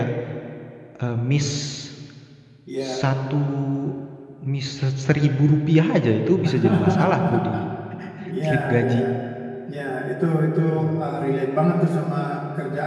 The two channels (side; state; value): both; identical; correlation 1.00